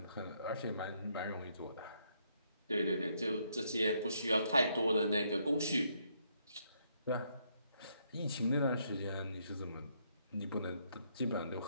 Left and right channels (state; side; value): inverted; both; correlation -0.73